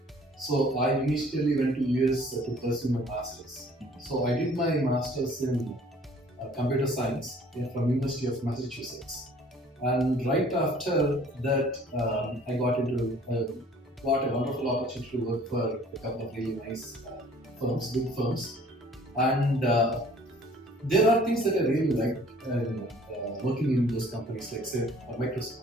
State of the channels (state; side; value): normal; both; correlation 0.53